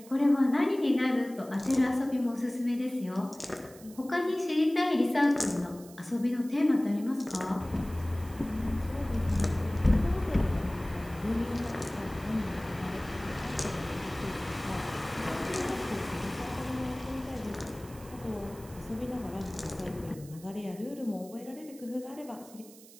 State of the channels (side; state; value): right; noise; hiss, 21 dB below the sound